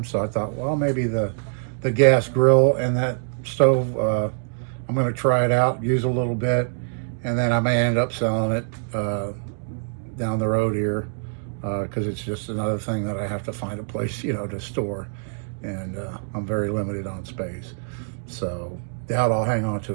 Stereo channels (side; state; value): left; silent; digital silence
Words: So I thought, well, maybe the gas grill and that stove, I'm going to try it out, use a little bit, and then I may end up selling it down the road here because it's just another thing that I have to find a place, to store. And I'm very limited on space. So doubt I'll hang on